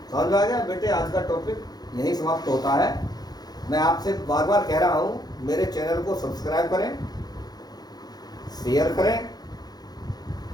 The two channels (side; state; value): right; late; 0.19 ms